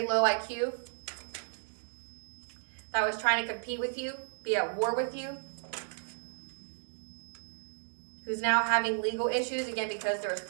low IQ. That was trying to compete with you, be at war with you. Who's now having legal issues, again, because there was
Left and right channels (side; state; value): left; silent; digital silence